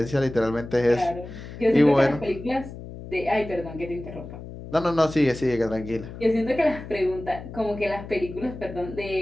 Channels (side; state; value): left; noise; hum, 12 dB below the sound